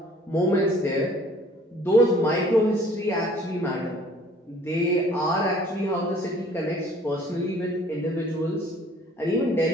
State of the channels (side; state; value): both; normal; correlation 0.54